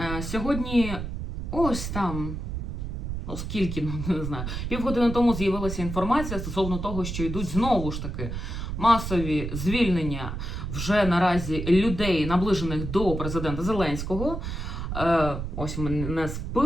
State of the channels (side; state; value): right; noise; rumble, 5 dB below the sound